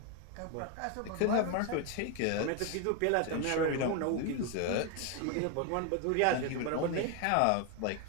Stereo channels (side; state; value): both; different; correlation 0.01